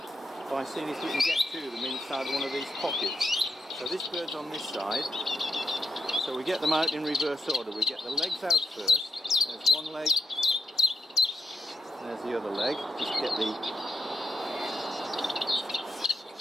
by seeing if we can get to them inside one of these pockets. So this bird's on this side, so we get them out in reverse order. We get the legs out first. There's one leg, there's the other leg. Just get the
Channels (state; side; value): normal; both; correlation 0.83